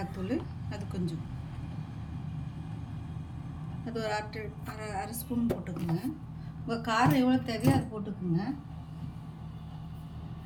அது கொஞ்சம், அது ஒரு அரை ஸ்பூன் போட்டுக்குங்க. உங்கள் காரம் எவ்வளோ தேவையோ அது போட்டுக்குங்க.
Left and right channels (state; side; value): identical; both; correlation 1.00